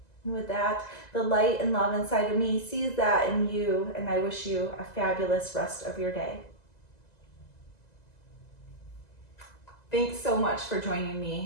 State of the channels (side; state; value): right; late; 2.0 ms